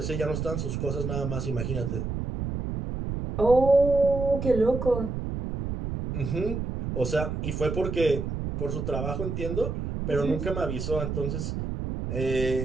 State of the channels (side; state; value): right; noise; rumble, 4 dB below the sound